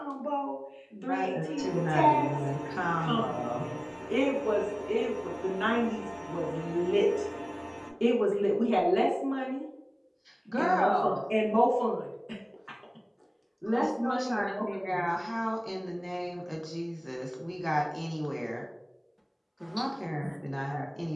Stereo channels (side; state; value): both; identical; correlation 1.00